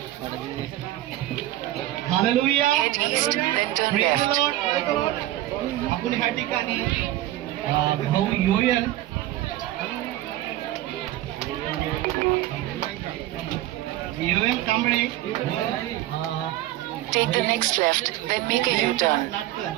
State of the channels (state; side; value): quieter; left; 14.9 dB